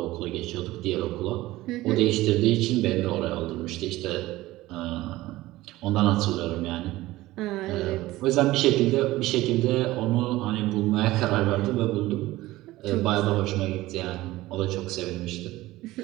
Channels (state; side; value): quieter; left; 17.5 dB